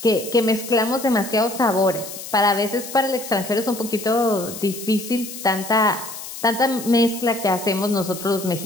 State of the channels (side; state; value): left; noise; hiss, 11 dB below the sound